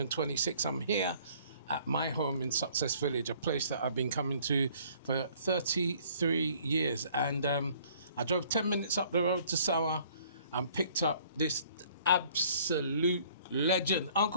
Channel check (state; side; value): inverted; both; correlation -0.58